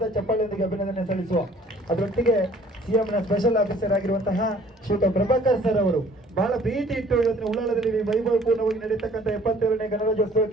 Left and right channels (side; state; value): both; normal; correlation 0.55